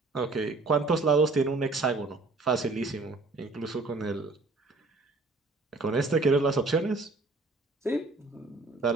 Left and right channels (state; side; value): quieter; left; 3.5 dB